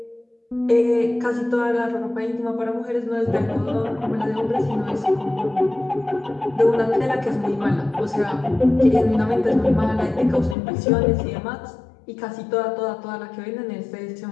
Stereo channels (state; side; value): drops out; right; at 10.6 s